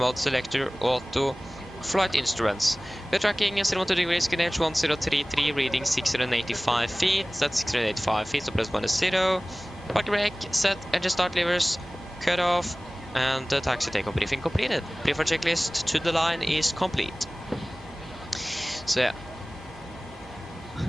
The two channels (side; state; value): both; normal; correlation 0.98